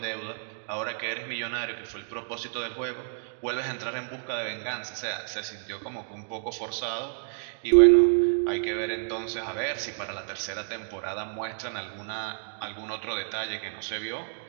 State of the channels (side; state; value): left; silent; digital silence